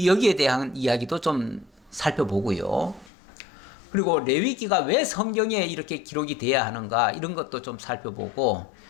대한 이야기도 좀 살펴보고요. 그리고 레위기가 왜 성경에 이렇게 기록이 돼야 하는가 이런 것도 좀 살펴보고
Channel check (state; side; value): drops out; right; at 3.1 s